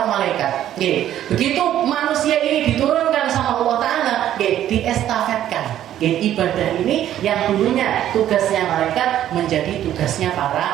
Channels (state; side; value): quieter; left; 11.7 dB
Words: malaikat. Begitu manusia ini diturunkan sama Allah Ta'ala, diestafetkan. Ibadah ini yang dulunya tugasnya malaikat menjadi tugasnya